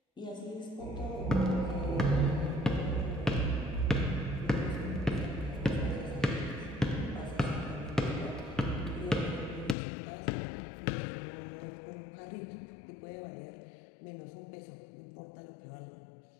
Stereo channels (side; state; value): right; drops out; at 9.8 s